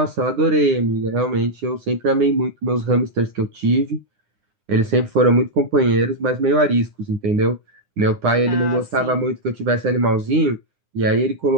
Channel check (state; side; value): late; left; 9.8 ms